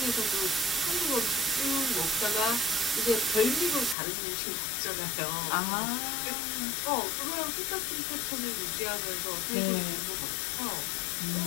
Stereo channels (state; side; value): drops out; right; at 4.0 s